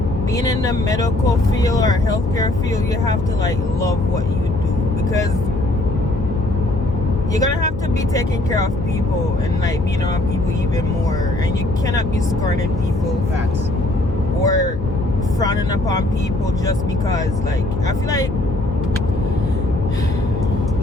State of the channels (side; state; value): left; noise; hum, 8 dB below the sound